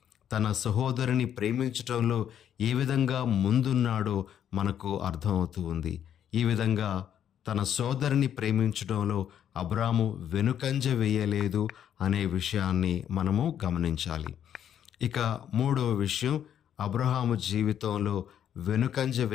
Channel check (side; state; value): right; quieter; 9.6 dB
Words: తన సహోదరుని ప్రేమించటంలో ఏ విధంగా ముందున్నాడో మనకు అర్థమవుతూ ఉంది. ఈ విధంగా తన సోదరుని ప్రేమించడంలో అబ్రాము వెనుకంజ వేయలేదు అనే విషయాన్ని మనము గమనించాలి. ఇక మూడవ విషయం, అబ్రహాము జీవితంలో వెనుకంజ